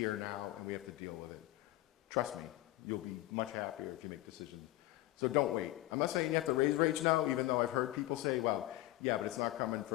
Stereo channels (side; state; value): right; quieter; 16.8 dB